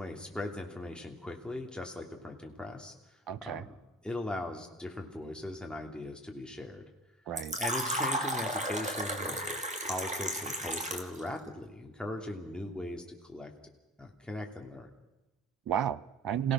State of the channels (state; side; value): normal; both; correlation 0.43